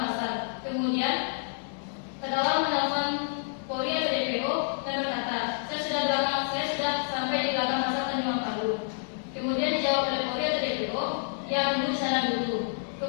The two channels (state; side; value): silent; right; 59 dB below the other